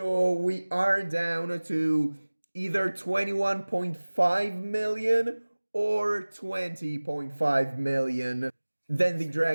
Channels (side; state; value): both; inverted; correlation -1.00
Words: we are down to either 21.5 million or 20.5 million. Then the